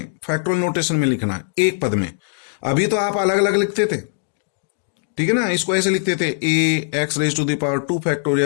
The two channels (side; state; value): right; silent; digital silence